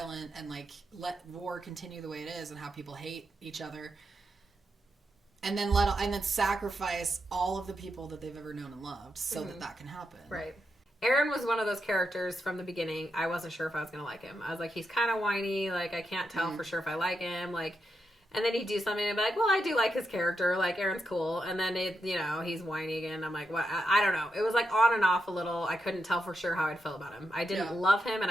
and, like, let war continue the way it is and how people hate each other. And then sacrifice all of the people that they've ever known and loved so that can happen. Right. Eren was one of those characters from the beginning. I wasn't sure if I was going to like him. I was like, he's kind of whiny. Like, I can't tell for sure if I like him. Like, and then he'd do something and be like, well, I do like his character. Like, Eren's cool. And then, he's whiny again. I'm like, what? I don't know. It was like on and off a little. I couldn't tell for sure how I'd feel about him. I didn't love him and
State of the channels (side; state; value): both; normal; correlation 0.85